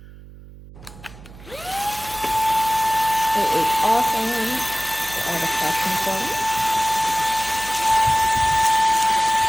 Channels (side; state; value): right; noise; hum, 19 dB below the sound